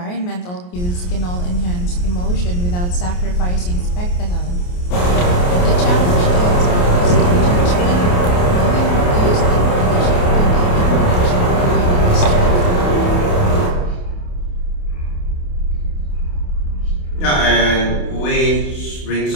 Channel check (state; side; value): late; right; 28 ms